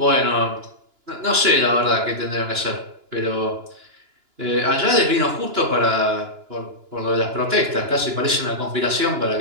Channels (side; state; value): left; late; 2.9 ms